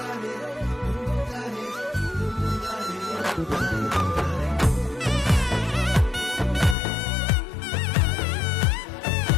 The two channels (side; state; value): right; drops out; at 6.8 s